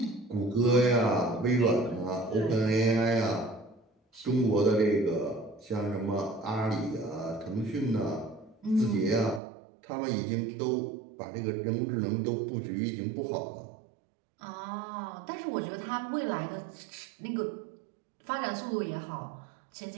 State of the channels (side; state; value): left; drops out; at 9.4 s